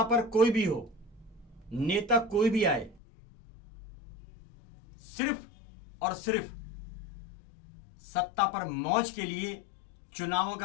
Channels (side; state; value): right; drops out; at 3.0 s